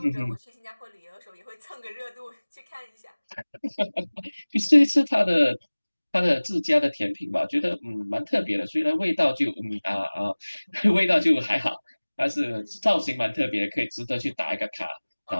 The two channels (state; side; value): inverted; both; correlation -1.00